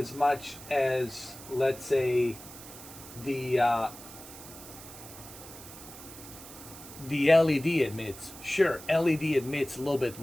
much as, let's say, the LED emits. Sure, LED emits a little bit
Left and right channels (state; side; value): noise; right; hiss, 15 dB below the sound